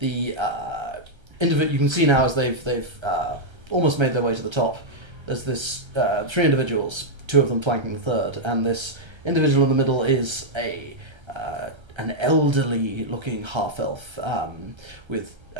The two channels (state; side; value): late; left; 1.3 ms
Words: you can see now as they've almost made their way to the top. There's this three individuals, two of them flanking the third, and this individual in the middle is an elderly-looking half-elf with